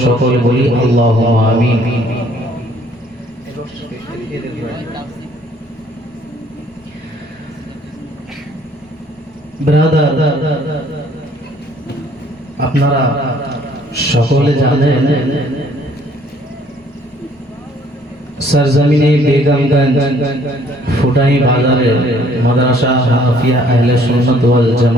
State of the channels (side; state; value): both; normal; correlation 0.61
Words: সকলে বলি আল্লাহুম্মা আমিন। ব্রাদার, আপনারা সকলে জানেন सरजमीने बेगमगंज ফুটাই বাজারে মাদ্রাসা হাফিয়া আহলে সুন্নাত ওয়াল